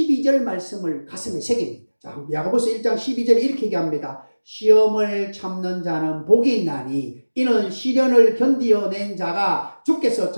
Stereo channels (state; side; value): inverted; both; correlation -1.00